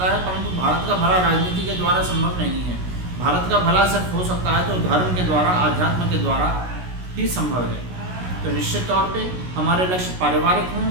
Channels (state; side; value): late; left; 16 ms